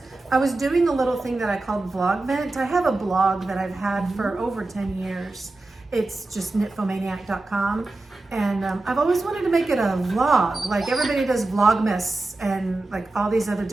was doing a little thing that I called Vlogment. I have a blog that I've had for over 10 years. It's just knitfomaniac.com. And I've always wanted to make it a vlog. Like everybody does Vlogmas and like all these other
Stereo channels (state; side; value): quieter; left; 3.1 dB